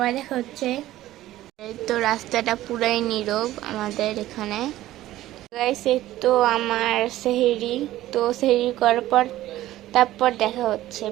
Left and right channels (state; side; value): quieter; left; 14.9 dB